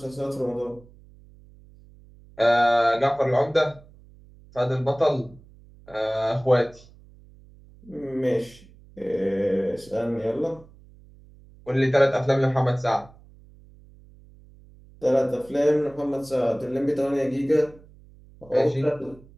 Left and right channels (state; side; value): noise; right; hum, 24 dB below the sound